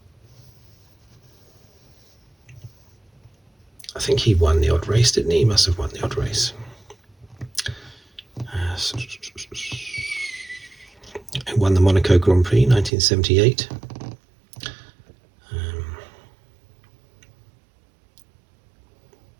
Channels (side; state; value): left; drops out; at 12.9 s